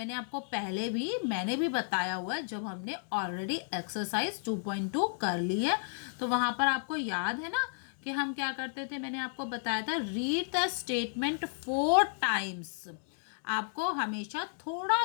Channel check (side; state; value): right; silent; digital silence